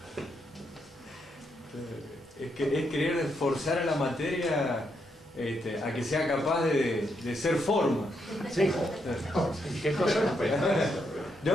Es querer forzar a la materia a que sea capaz de ser forma. Sí. ¿Qué cosa?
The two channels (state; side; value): normal; both; correlation 0.79